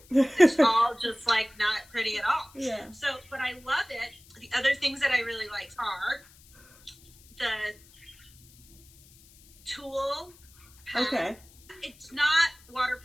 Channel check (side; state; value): left; noise; hiss, 26 dB below the sound